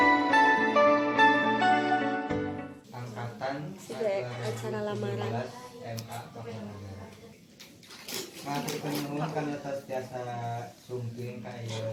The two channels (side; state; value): both; identical; correlation 1.00